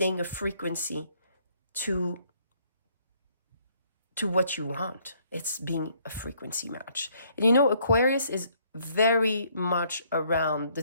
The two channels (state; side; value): inverted; both; correlation -0.66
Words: a frequency to what you want. It's being a frequency match. And you know, Aquarius is very much around the